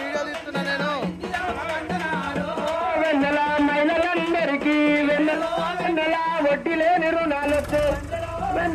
వెన్నెల మహిళలందరికీ వెన్నెల వెన్నెల వడ్డీ లేని రుణాలొచ్చు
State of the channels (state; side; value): identical; both; correlation 1.00